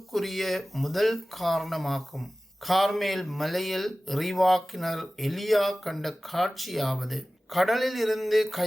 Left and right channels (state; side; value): normal; both; correlation 0.97